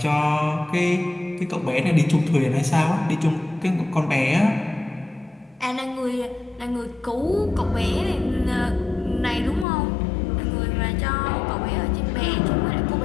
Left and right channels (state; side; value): drops out; right; at 9.7 s